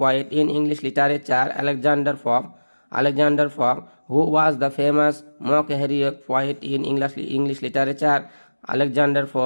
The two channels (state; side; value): inverted; both; correlation -1.00